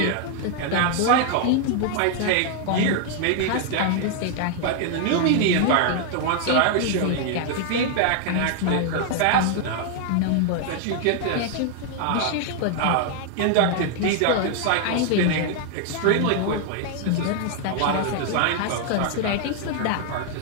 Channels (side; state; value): both; different; correlation 0.00